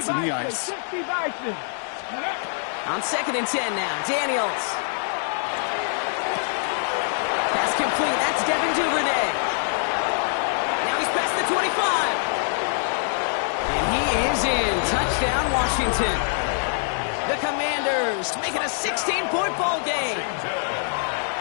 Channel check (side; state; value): right; silent; digital silence